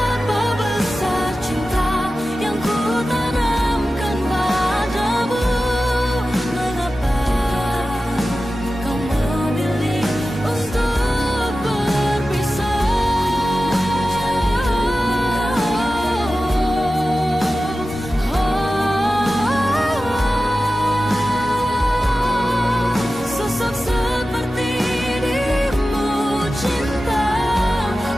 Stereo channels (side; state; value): both; normal; correlation 0.94